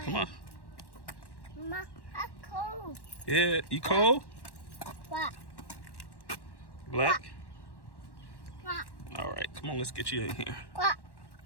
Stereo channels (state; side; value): late; right; 1.1 ms